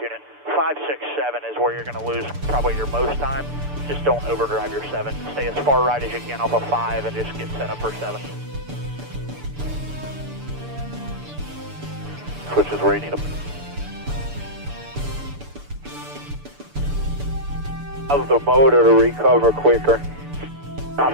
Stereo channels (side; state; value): left; late; 6.9 ms